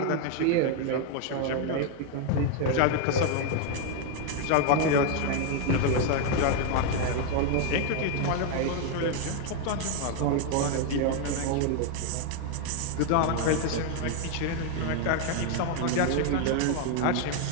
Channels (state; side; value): different; both; correlation 0.00